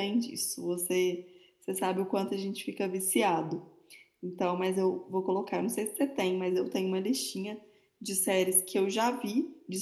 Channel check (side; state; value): both; identical; correlation 1.00